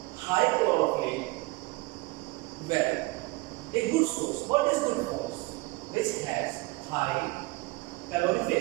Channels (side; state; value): left; quieter; 23.1 dB